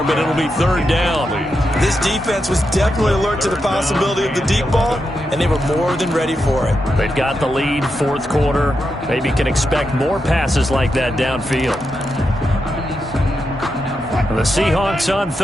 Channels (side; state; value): both; normal; correlation 0.86